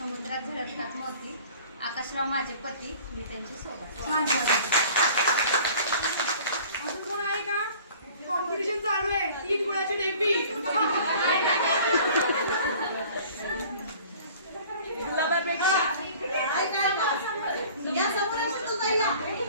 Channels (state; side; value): inverted; both; correlation -0.48